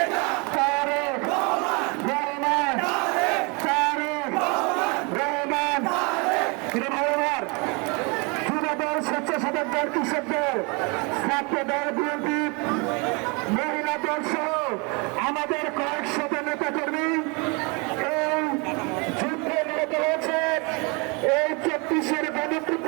তারেক রহমান, তারেক রহমান। যুবদল, স্বেচ্ছাসেবক দল, কৃষক দল, ছাত্র দল, বিএনপি, মহিলা দল সহ আমাদের কয়েকশত নেতা কর্মী এই যুদ্ধে নিহত হয়েছে। এই 34-এর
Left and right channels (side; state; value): left; quieter; 30.6 dB